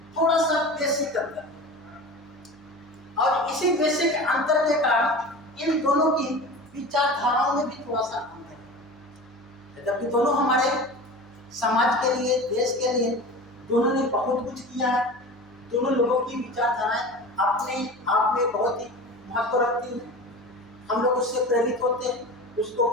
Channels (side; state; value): right; noise; hum, 28 dB below the sound